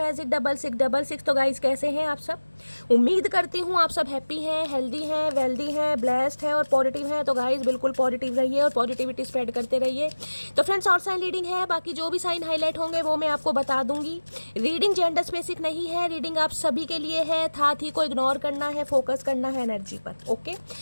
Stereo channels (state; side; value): inverted; both; correlation -1.00